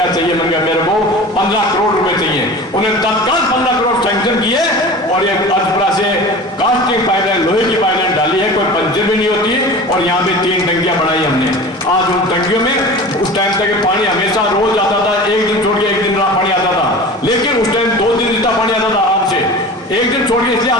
चाहिए, मैंने कहा मेरे को 15 करोड़ रुपए चाहिए। उन्हें तत्काल 15 करोड़ सैंक्शन किए और ये अजपरा से कास्टिंग पाइपलाइन, लोहे की पाइपलाइन डाली है, कोई पंचर भी नहीं होती। और यहाँ पे 3 टंकियां बनाई हमने। आज उन टंकियों में उस टाइम तक पानी हमेशा रोज आता था, एक दिन छोड़ के एक दिन पानी आता था, लेकिन उस टाइम 2 दिन जितना पानी आता था आराम से। एक दिन छोड़ के इसलिए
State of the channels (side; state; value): both; normal; correlation 0.36